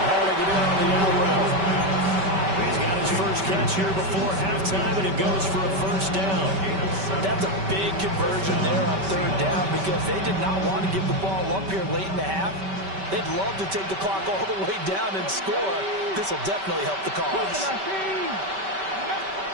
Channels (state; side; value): late; left; 5.2 ms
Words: hauling it in on the out route. He's got his first catch here before halftime, and it goes for a 1st down. That's a big conversion there on 3rd down because they did not want to give the ball up here late in the half. They'd love to take the clock all the way down and score. This will definitely help the cause.